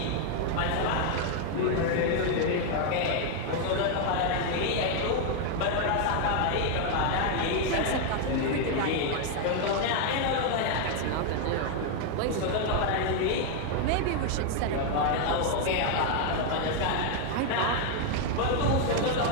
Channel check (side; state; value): both; different; correlation 0.01